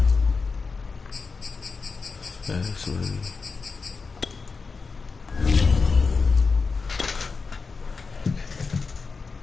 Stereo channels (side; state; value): right; quieter; 4.6 dB